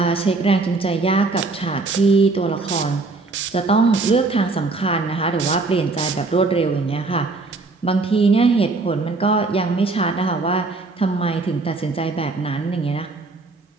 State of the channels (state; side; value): quieter; left; 3.6 dB